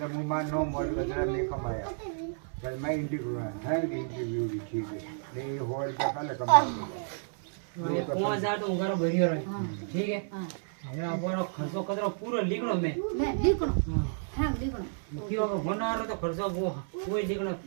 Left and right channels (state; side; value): silent; left; 57 dB below the other